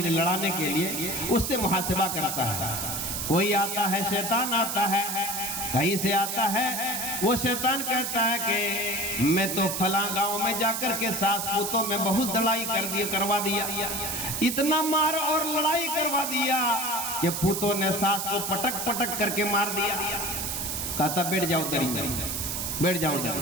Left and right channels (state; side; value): noise; right; hiss, 3 dB below the sound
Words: لڑانے کے لیے، اس سے محاسبہ کرتا ہے. کوئی آتا ہے، شیطان آتا ہے، کہیں سے آتا ہے، وہ شیطان کہتا ہے کہ میں تو فلاں گاؤں میں جا کر کے ساس پوتوں میں بہت لڑائی کروا دیا، اتنا مار اور لڑائی کروا دیا کہ پوتوں نے ساس کو پٹک پٹک کر کے مار دیا. کہتا بیٹھ جاؤ دریں، بیٹھ جاؤ.